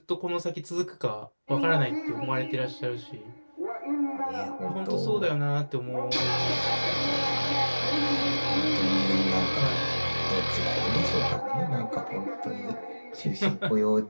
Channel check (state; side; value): inverted; both; correlation -1.00